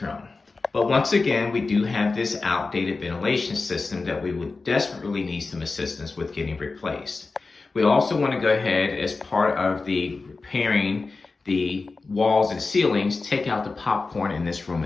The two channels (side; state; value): right; quieter; 3.9 dB